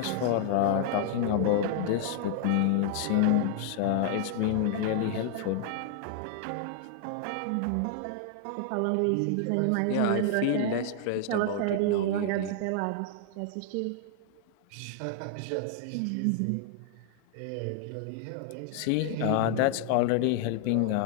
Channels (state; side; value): different; both; correlation 0.00